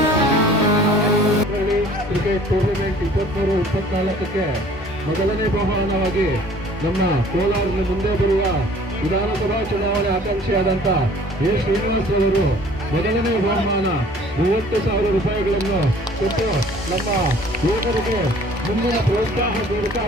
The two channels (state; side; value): normal; both; correlation 0.52